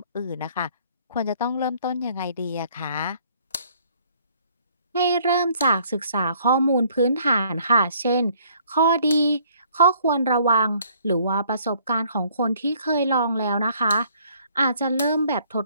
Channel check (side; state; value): both; inverted; correlation -0.61